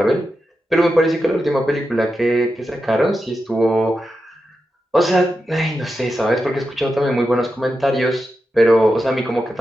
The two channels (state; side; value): normal; both; correlation 0.89